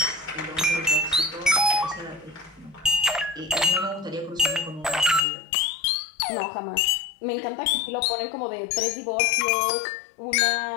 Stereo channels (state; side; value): drops out; right; at 5.2 s